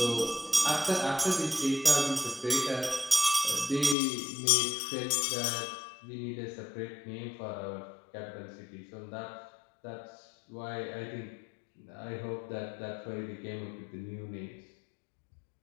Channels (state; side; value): drops out; right; at 4.0 s